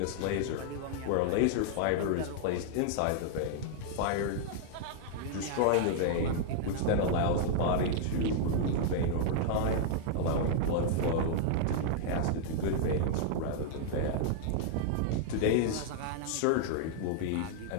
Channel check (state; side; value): different; both; correlation -0.01